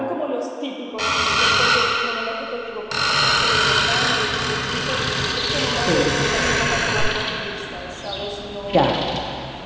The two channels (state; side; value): identical; both; correlation 1.00